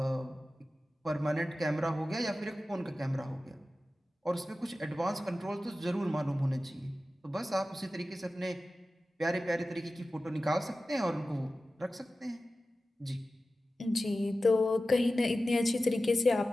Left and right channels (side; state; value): both; normal; correlation 0.95